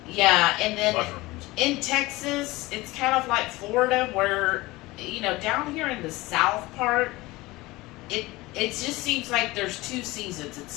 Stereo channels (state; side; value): quieter; right; 20.4 dB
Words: Yeah, and then mushrooms. In Texas, it's kind of like Florida where, down here in the south part, it just seems like there's 2 seasons. It's